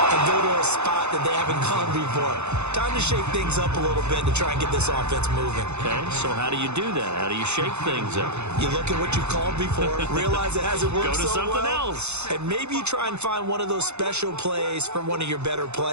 go to a spot that they haven't gone before. Time to shake things up a little bit to try and get this offense moving. Okay, so how do you do that? How do you shake things up? You look at what you've called before, realize it hasn't worked Go to so something well, else. and maybe you try and find one of those special plays from one of your better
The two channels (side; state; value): left; late; 0.81 ms